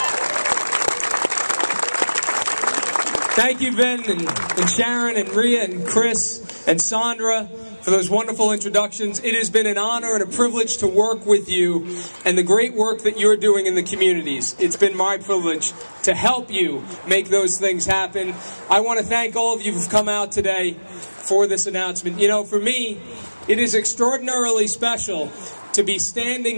Thank you, Vin, and Sharon, and Rhea, and Chris, and Sandra, for those wonderful introductions. It has been an honor and a privilege to work with you and the great work that you're doing in the communities. It's been my privilege to help you make those things happen. I want to thank all of you who've come out today for this announcement. You know, for me, it is extraordinarily special to be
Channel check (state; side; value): inverted; both; correlation -1.00